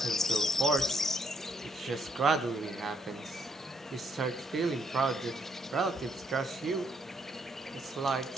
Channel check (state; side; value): normal; both; correlation 0.72